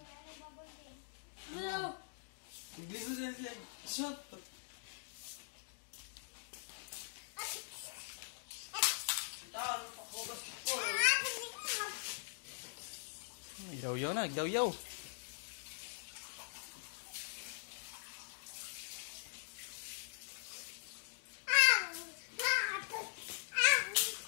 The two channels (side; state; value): right; silent; digital silence